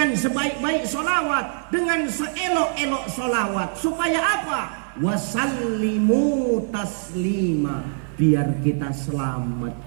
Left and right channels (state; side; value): silent; left; 59 dB below the other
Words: sebaik-baik sholawat, dengan seelok-elok sholawat. Supaya apa? Wasallimu taslima, biar kita selamat.